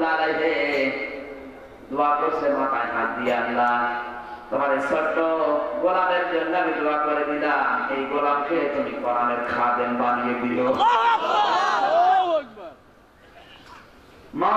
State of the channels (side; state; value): both; identical; correlation 1.00